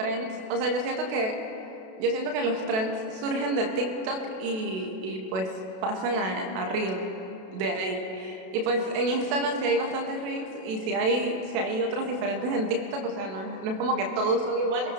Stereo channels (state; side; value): late; left; 32 ms